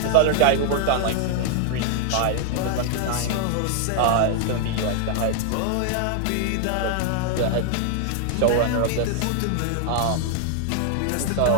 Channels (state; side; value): different; both; correlation 0.00